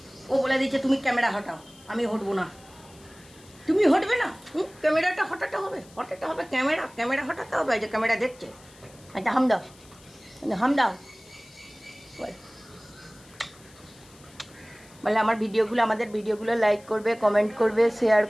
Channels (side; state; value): left; noise; hiss, 25 dB below the sound